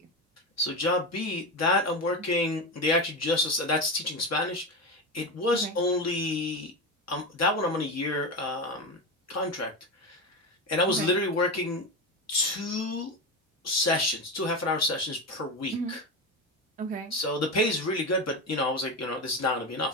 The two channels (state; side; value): normal; both; correlation 0.18